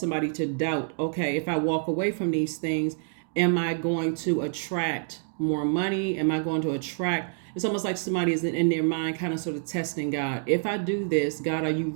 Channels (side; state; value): left; silent; digital silence